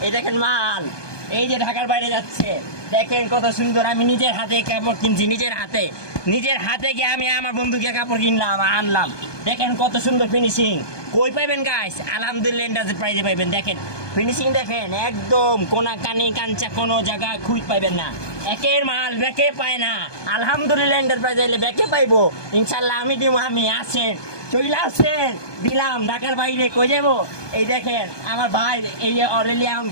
এই দেখেন মাল, এই যে ঢাকার বাইরে যাচ্ছে। দেখেন কত সুন্দর, আমি নিজের হাতে কাপড় কিনছি, নিজের হাতে গিয়ে আমি আমার বন্ধুকে কাপড় কিনলাম, আনলাম। দেখেন কত সুন্দর ফিনিশিং। কই পাইবেন গাইস? আলহামদুলিল্লাহ এন্টারপ্রাইজে পাইবেন। দেখেন ফিনিশিং, দেখেন একদম কোনা কানি কাঞ্চা কোনো জায়গায় খুঁজ পাইবেন না। একের মাল ব্যাকে পায় না। আলহামদুলিল্লাহ এন্টারপ্রাইজ এলে ব্যাকে পাইবো ইনশাল্লাহ। আমি দিব, আমি আসেন, চলে আসেন, দিলাম। ঢাকার বাইরে কই যাবো? এই দেখেন আমার ভাই, এই যে অরেলিয়াম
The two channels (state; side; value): late; right; 1.2 ms